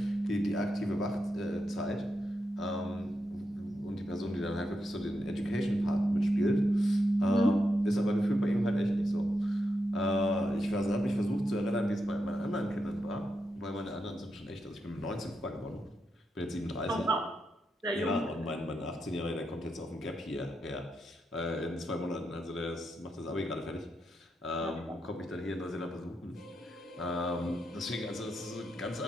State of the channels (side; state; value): both; normal; correlation 0.85